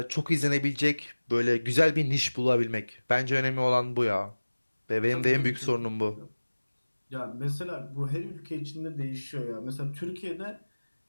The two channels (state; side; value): inverted; both; correlation -1.00